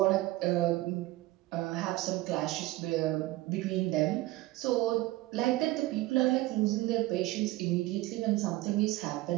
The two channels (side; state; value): left; quieter; 18.2 dB